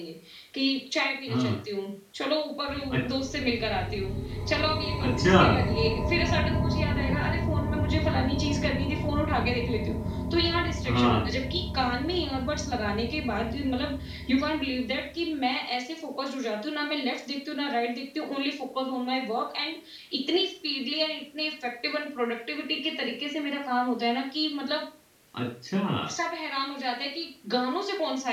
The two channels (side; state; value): both; identical; correlation 1.00